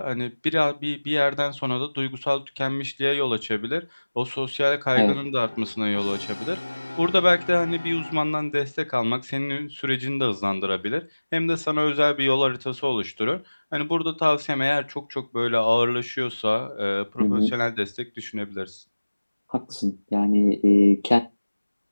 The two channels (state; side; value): inverted; both; correlation -1.00